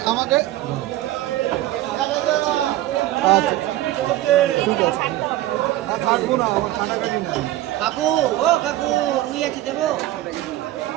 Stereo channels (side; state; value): left; quieter; 15.0 dB